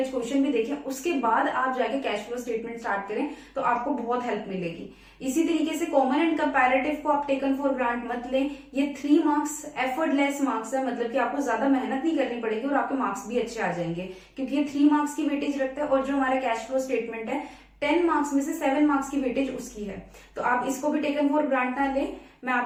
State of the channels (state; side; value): identical; both; correlation 1.00